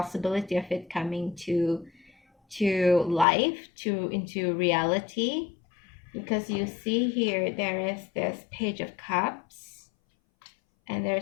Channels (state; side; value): drops out; right; at 3.2 s